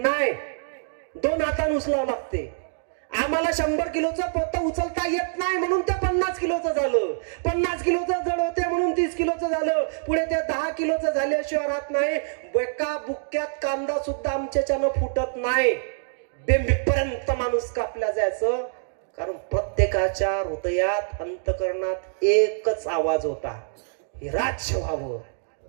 2 हातानं उचलावं लागते. आम्हाला 100 किलोचं पोतं उचलता येत नाही म्हणून ते 50 किलोचं झालं. 50 किलोचं जड होते म्हणून 30 किलोचं झालं. पुढे ते 10 किलोचं झाल्याशिवाय राहत नाही. एका बुक्क्यात कांदा सुद्धा आमच्याच्यानं फुटत नाही. बेंबीपर्यंत माणूस कापला जायचं. कारण प्रत्येकाच्या हृदयात अंतकरणात एकच आवाज होता, हे राज्य व्हावं,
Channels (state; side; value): silent; left; digital silence